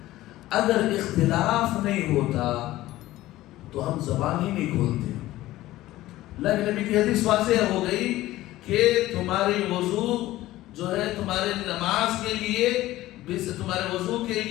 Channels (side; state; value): right; quieter; 16.2 dB